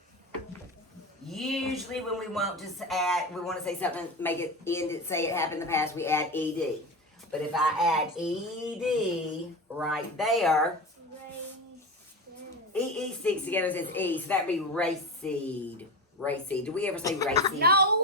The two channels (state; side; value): normal; both; correlation 0.23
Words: usually when we want to say something, make it end it, say it happened in the past, we add ed. But if I add ed right there, EE sticks together and says E, so that'd be raceed. Raceed. Do we ever say raceed?